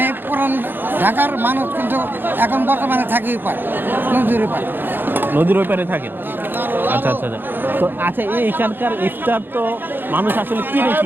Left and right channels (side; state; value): left; late; 0.097 ms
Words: পুরান ঢাকার মানুষ, কিন্তু এখন বর্তমানে থাকি পার নদীর পার। নদীর ওই পারে থাকেন? আচ্ছা আচ্ছা আচ্ছা। তো আচ্ছা, এইখানকার ইফতার তো মানুষ আসলে কিনে